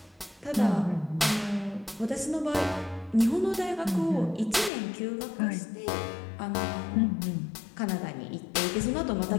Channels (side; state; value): right; drops out; at 4.7 s